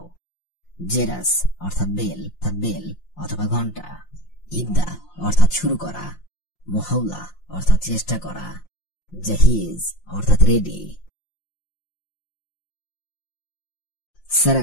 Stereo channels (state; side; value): late; right; 5.7 ms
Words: জেরাস অর্থাৎ বেল অথবা ঘন্টা, ইবদা অর্থাৎ শুরু করা, মুহাওলা অর্থাৎ চেষ্টা করা, জাহিজ অর্থাৎ রেডি।